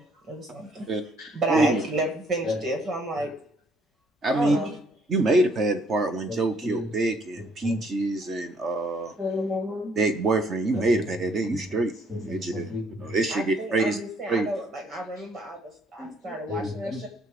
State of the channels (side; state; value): both; normal; correlation 0.65